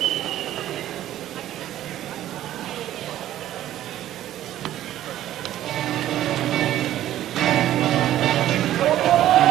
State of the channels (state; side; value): quieter; left; 12.9 dB